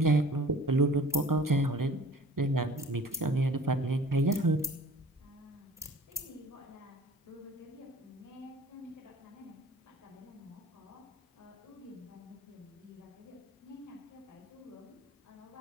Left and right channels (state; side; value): normal; both; correlation 0.47